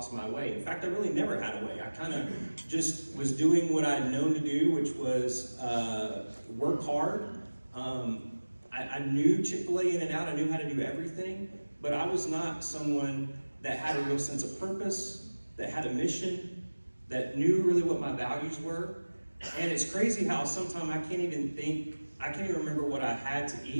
my way. In fact, I really never had a way. I kind of just was doing what I'd known to do, which was work hard. I knew Chick-fil-A in and out. I knew how to do everything. But I was not someone that had a real sense of purpose, that had a mission, that knew really what my values were. And it's crazy how sometimes I can't even remember what I had to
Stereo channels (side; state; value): both; inverted; correlation -1.00